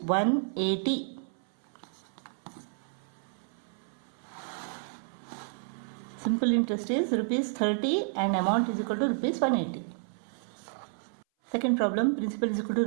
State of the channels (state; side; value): silent; left; 57 dB below the other